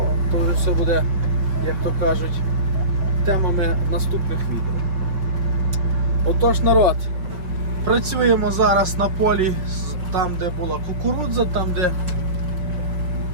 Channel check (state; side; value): late; left; 5.8 ms